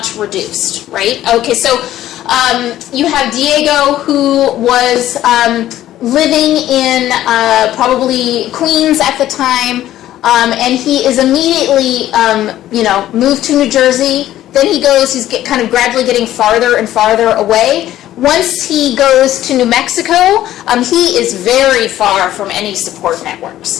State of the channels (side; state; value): right; quieter; 13.3 dB